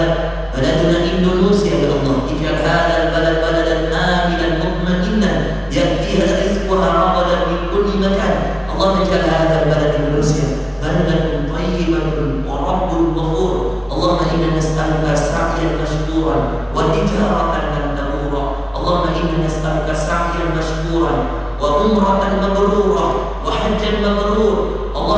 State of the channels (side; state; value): both; identical; correlation 1.00